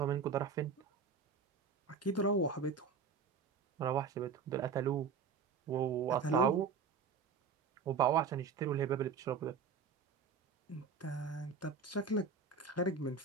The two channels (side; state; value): left; quieter; 5.6 dB